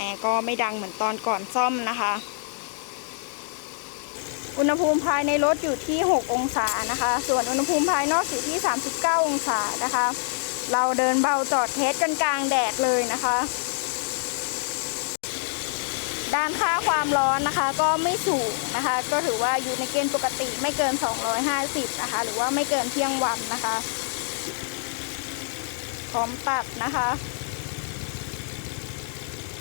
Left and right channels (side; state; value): right; silent; digital silence